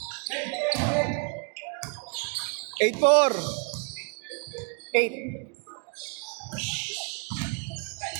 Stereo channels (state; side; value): quieter; left; 35.5 dB